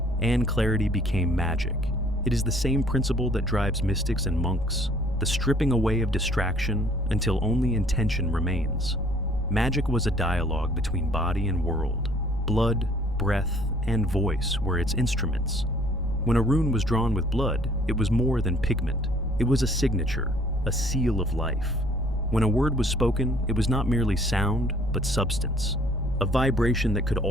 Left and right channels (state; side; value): noise; left; rumble, 12 dB below the sound